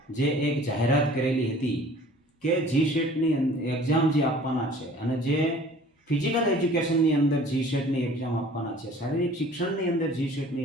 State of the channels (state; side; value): normal; both; correlation 0.49